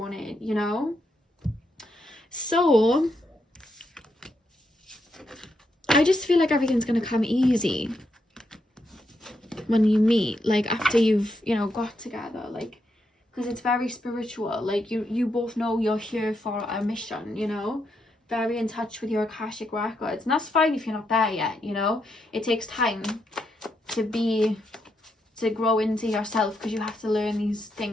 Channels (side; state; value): both; normal; correlation 0.81